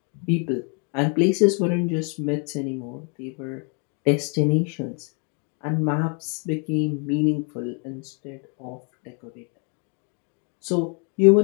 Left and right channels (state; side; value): quieter; right; 38.5 dB